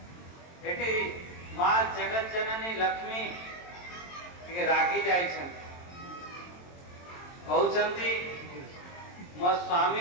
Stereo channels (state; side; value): late; right; 22 ms